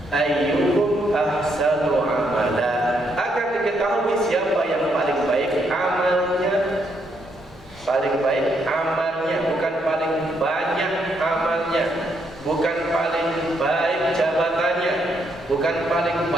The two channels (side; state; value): both; normal; correlation 0.75